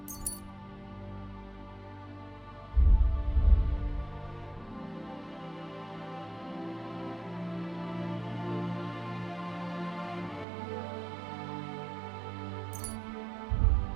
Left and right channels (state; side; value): drops out; left; at 10.5 s